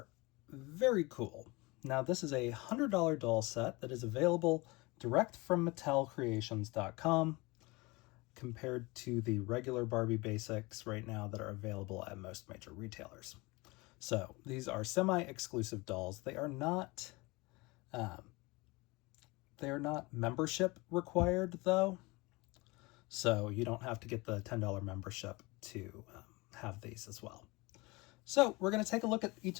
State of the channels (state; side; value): quieter; right; 24.2 dB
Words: very cool. Now this is a $100 doll set that is available direct from MattelCreations.com, compared to the regular Barbie basics right now that are available at most major retailers. So these are semi-exclusive dolls. They are not membership required though, so you don't have to get the $10 membership to have these as well. So we're going to take a look at each